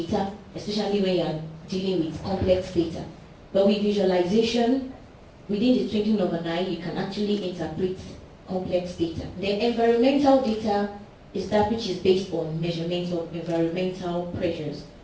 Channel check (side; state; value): both; identical; correlation 1.00